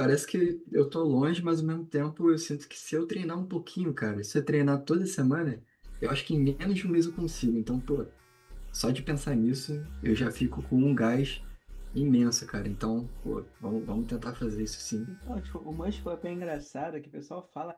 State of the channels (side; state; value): both; identical; correlation 1.00